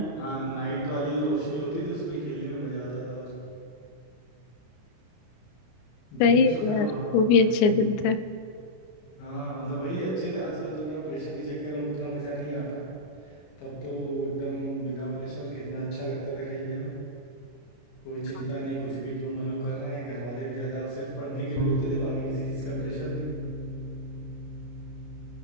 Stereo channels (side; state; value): right; late; 33 ms